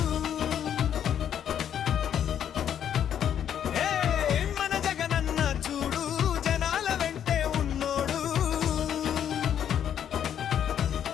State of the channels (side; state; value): right; quieter; 9.4 dB